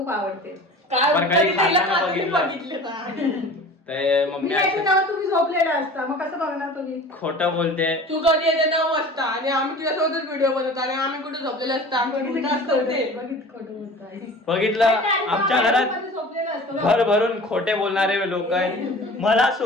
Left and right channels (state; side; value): normal; both; correlation 0.41